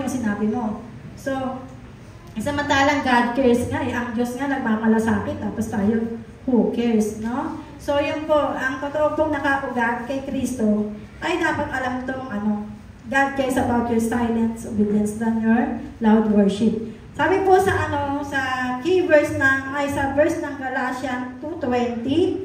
sinabi mo. So, samantalang God cares nga, ang Diyos nga nagmamalasakit, tapos tayo who cares, no? So, yun po, ang totoo pong nakaugat kay Kristo ay dapat alam itong God cares about your silent obedience than your loud worship. Sabi po sa sa verse ng Galatians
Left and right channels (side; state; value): both; identical; correlation 1.00